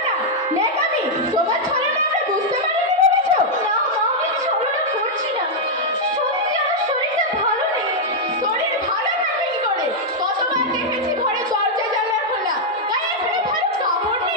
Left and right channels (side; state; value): both; normal; correlation -0.03